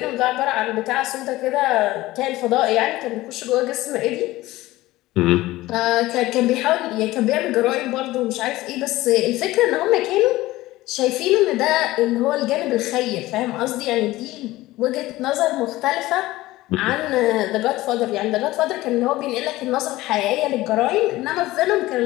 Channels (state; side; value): quieter; right; 17.7 dB